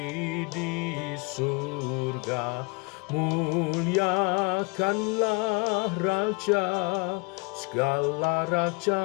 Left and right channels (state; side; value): quieter; right; 30.0 dB